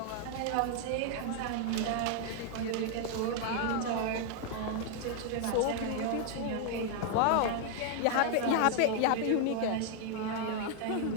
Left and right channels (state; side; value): different; both; correlation 0.00